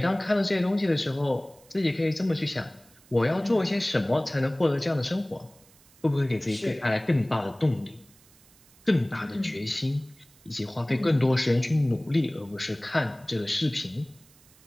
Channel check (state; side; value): noise; right; hiss, 28 dB below the sound